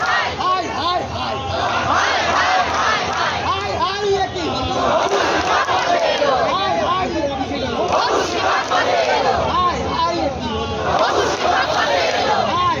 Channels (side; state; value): both; identical; correlation 1.00